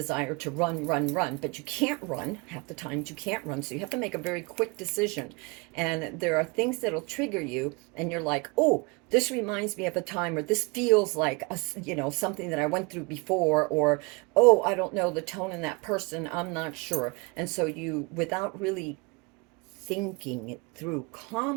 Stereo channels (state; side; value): quieter; left; 28.2 dB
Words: to run, but you can't run. Half the times you can't run, so you have to make a very quick decision. And there are things that'll trigger you, and you're like, oh, this reminds me of a time, or this feels like something that I went through before, or oh, I don't know the tone in that person, I'm not sure. And so you, without really thinking it through